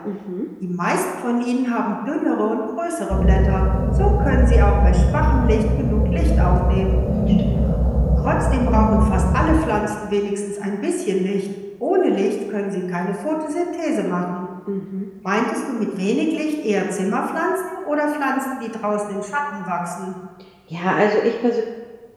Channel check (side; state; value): both; identical; correlation 1.00